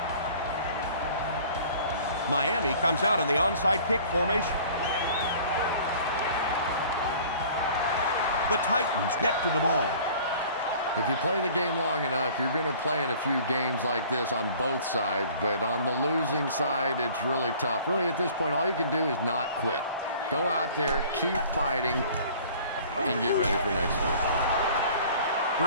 Miami comes out in the onside kick formation. The Titans get to the ball. If you play the game long enough, you're going to play in a few games like this on both sides, but on the losing side, it's really tough. Really, at this point, all you can do is not quit. Go out there, keep fighting, and get ready for next week.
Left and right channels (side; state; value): both; inverted; correlation -0.49